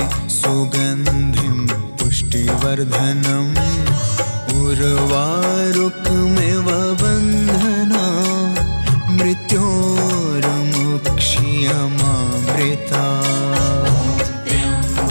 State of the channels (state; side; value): inverted; both; correlation -1.00